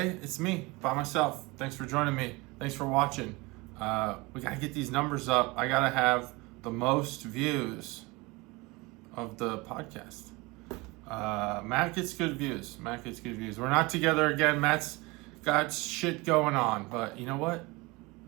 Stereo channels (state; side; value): quieter; left; 24.2 dB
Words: it's me, by myself. Thanks for joining me. Thanks for watching. We got to get these numbers up. I got to have the most views of the podcast. Matt gets good views. We're not together again. Matt's got shit going on, but you know what?